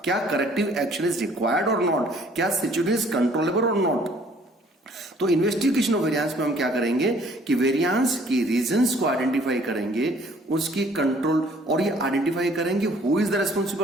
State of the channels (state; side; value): normal; both; correlation 0.57